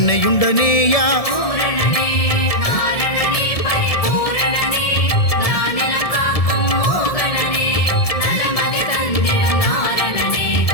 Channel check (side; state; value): right; late; 1.7 ms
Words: பூரணனே நாரணனே பரிபூரணனே நானிலம் காக்கும் மோகனனே நலமதி தந்திடும் நாரணனே